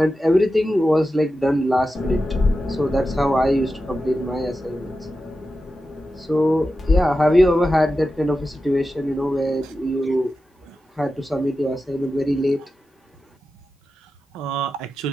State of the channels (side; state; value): both; normal; correlation 0.92